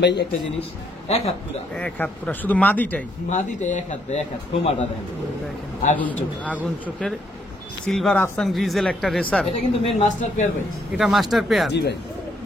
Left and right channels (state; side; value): normal; both; correlation 0.72